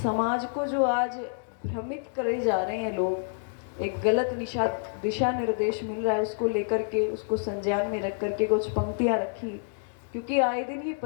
को जो आज भ्रमित करे जा रहे हैं लोग, एक गलत दिशा निर्देश मिल रहा है, उसको लेकर के, उसको संज्ञान में रख करके कुछ पंक्तियां रखी, क्योंकि आए दिन ये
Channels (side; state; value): right; silent; digital silence